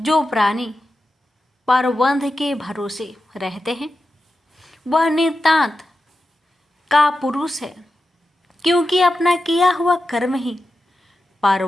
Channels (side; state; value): both; normal; correlation 0.91